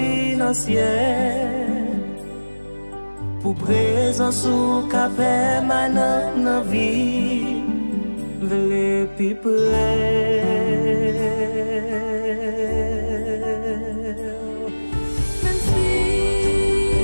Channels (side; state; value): both; inverted; correlation -1.00